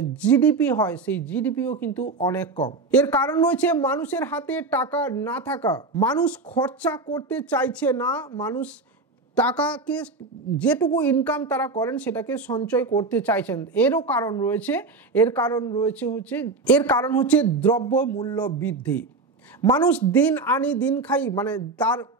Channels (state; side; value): quieter; left; 3.7 dB